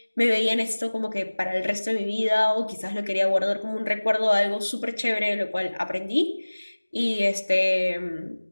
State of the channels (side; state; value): both; inverted; correlation -1.00